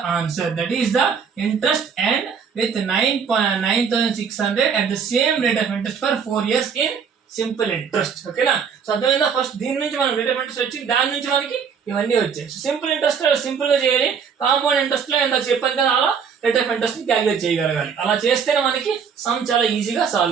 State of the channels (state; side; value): quieter; left; 6.6 dB